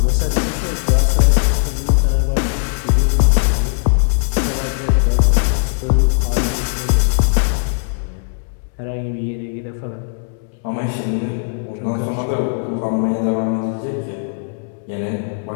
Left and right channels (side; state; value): right; silent; digital silence